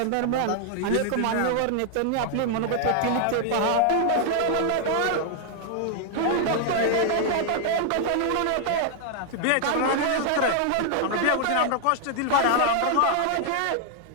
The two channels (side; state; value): both; different; correlation 0.00